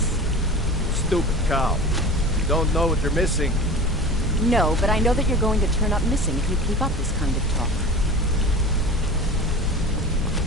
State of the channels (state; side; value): normal; both; correlation 0.35